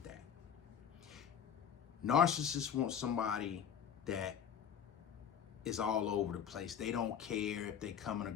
that. Narcissists want somebody that is all over the place. They don't care if they coming or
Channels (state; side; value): quieter; right; 8.1 dB